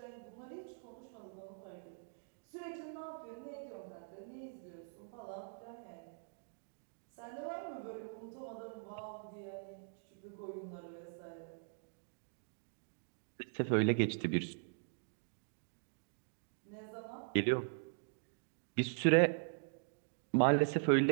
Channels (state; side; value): silent; left; digital silence